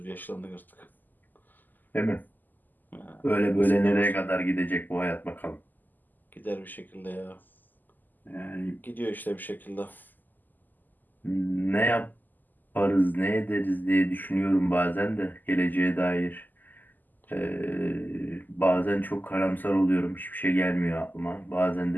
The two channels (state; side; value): late; right; 0.086 ms